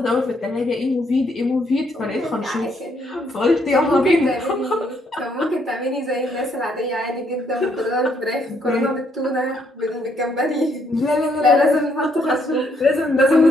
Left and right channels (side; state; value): both; normal; correlation 0.72